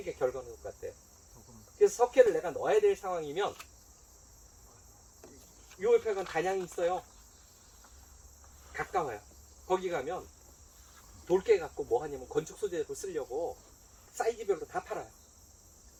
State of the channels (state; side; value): identical; both; correlation 1.00